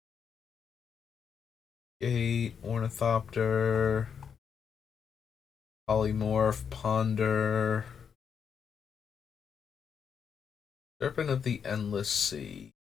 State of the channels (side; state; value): right; quieter; 7.0 dB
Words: Gate, Ornithopter, Polymorph, Ponder, Serpent of the Endless Sea.